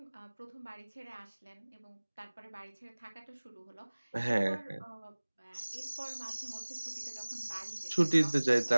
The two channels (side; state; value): both; inverted; correlation -1.00